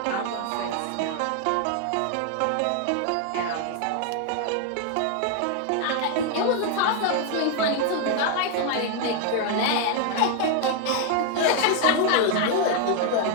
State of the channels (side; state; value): both; different; correlation 0.00